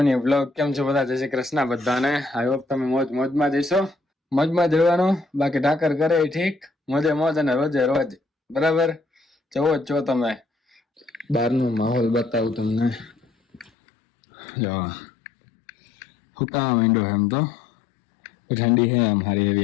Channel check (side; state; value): right; drops out; at 13.7 s